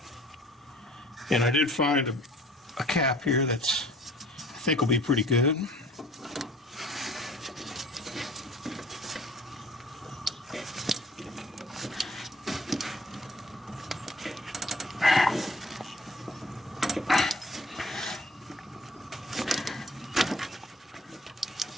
And I did find a cap here that's I think will be pretty good.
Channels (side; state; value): both; normal; correlation 0.53